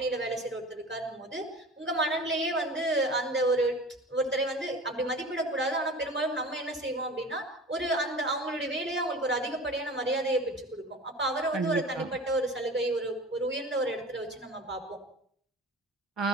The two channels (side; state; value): both; normal; correlation 0.37